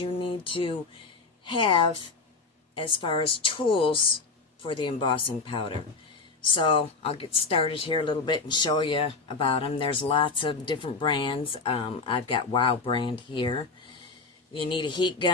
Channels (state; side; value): quieter; right; 4.2 dB